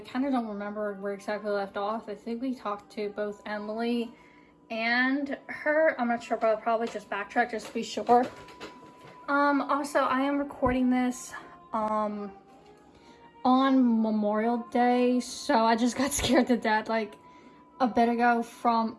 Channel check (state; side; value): identical; both; correlation 1.00